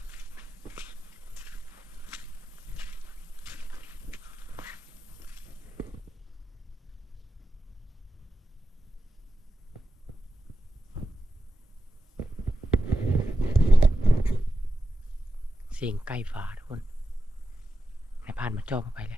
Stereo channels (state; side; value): normal; both; correlation 0.90